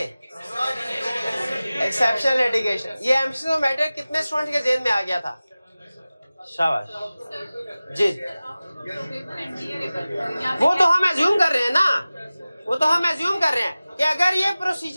Exceptional litigation. ये एमसीज ऑफ मैटर कितने स्टूडेंट के जेहन में आ गया था? शाबाश जी, वो तो हम एज्यूम कर रहे हैं ना, वो तो हम एज्यूम कर रहे हैं कि अगर ये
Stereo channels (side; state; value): both; inverted; correlation -0.97